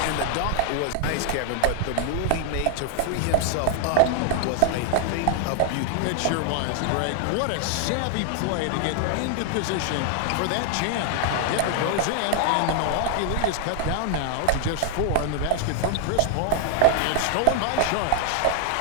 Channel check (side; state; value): both; different; correlation 0.00